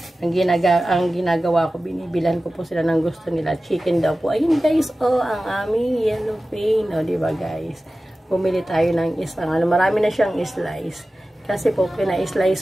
ang ginagawa ko, binibilan ko po sila ng gusto nila. Chicken daw po. Ayun guys, ang aming yellow pain. Diba guys? Bumili tayo ng isang, marami na siyang slice. Kasi po,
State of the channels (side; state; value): both; normal; correlation 0.95